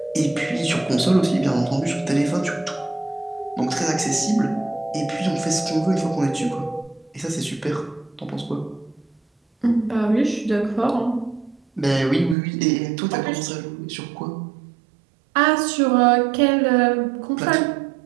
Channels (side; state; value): left; drops out; at 12.4 s